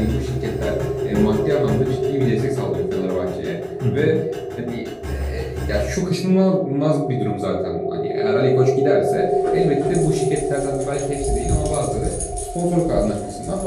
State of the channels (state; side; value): identical; both; correlation 1.00